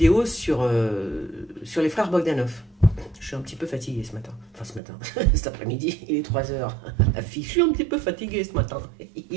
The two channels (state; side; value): drops out; left; at 4.8 s